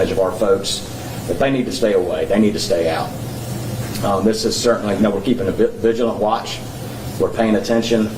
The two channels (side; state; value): both; identical; correlation 1.00